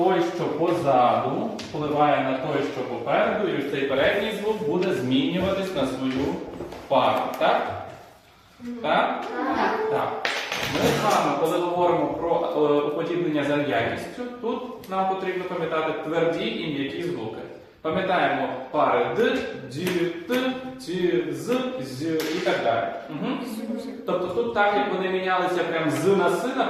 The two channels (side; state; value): both; identical; correlation 1.00